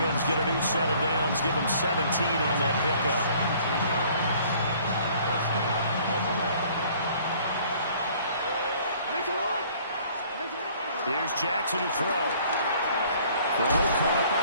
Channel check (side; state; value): both; inverted; correlation -0.56